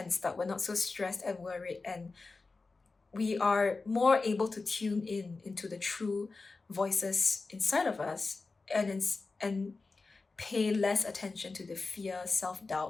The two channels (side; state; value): right; quieter; 3.9 dB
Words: up, we're not so stressed and worried, and we are more able to tune in into the true voices inside of us, and pay less attention to the fear,